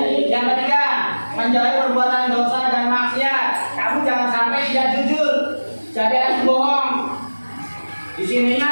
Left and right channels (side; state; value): both; inverted; correlation -1.00